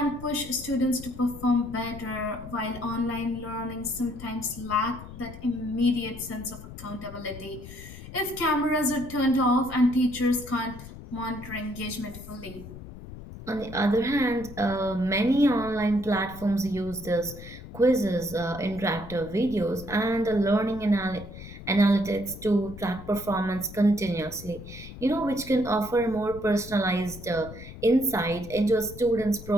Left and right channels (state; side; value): noise; left; rumble, 14 dB below the sound